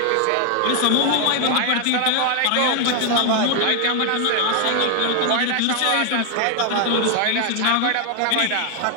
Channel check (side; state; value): both; different; correlation 0.00